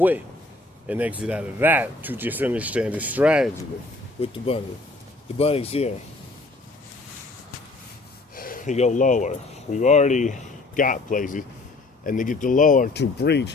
and exit out of that to just understand the strategy with the bunny. The bunny's here. You go lower. We've already got places. And to get the lower to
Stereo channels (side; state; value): right; quieter; 3.1 dB